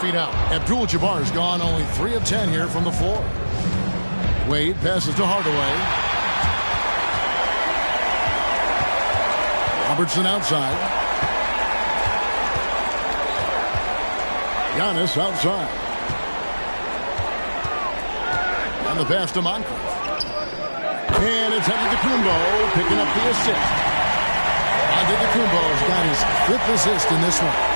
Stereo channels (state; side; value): inverted; both; correlation -1.00